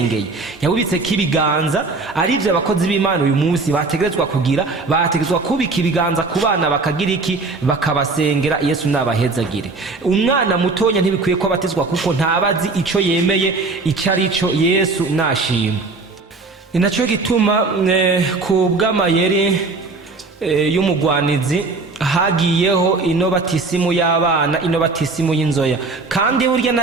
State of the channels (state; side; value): quieter; left; 3.8 dB